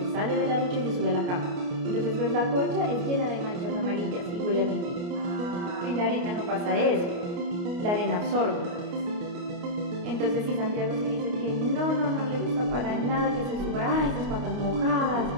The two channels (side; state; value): left; late; 29 ms